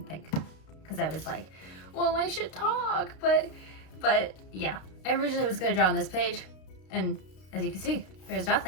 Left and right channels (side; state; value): right; late; 32 ms